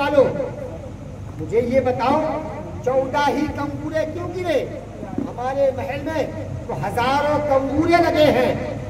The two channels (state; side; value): identical; both; correlation 1.00